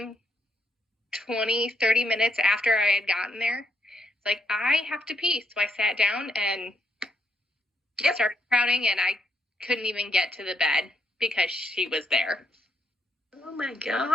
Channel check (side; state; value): both; normal; correlation 0.76